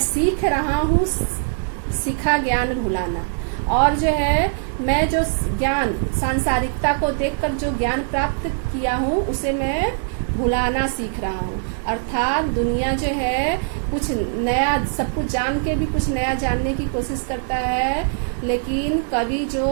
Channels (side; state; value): left; silent; digital silence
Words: सीख रहा हूँ सीखा ज्ञान भुलाना। और जो है मैं जो ज्ञान सांसारिकता को देखकर जो ज्ञान प्राप्त किया हूँ उसे मैं भुलाना सीख रहा हूँ। अर्थात दुनिया जो है कुछ नया, सब कुछ जान के भी कुछ नया जानने की कोशिश करता है, लेकिन कवि